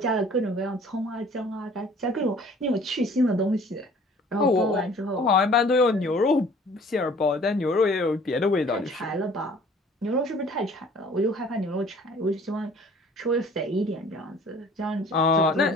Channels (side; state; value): both; normal; correlation 0.52